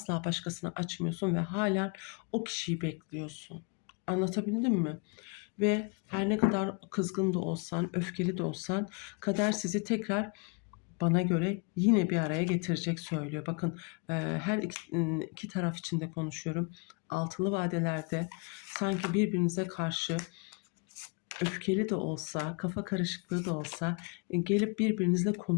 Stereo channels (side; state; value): right; quieter; 32.7 dB